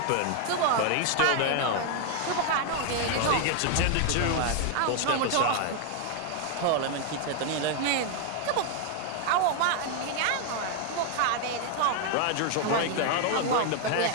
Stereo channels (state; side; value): different; both; correlation 0.00